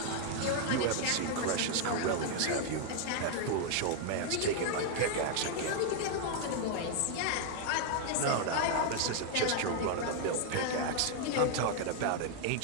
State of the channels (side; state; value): both; different; correlation 0.00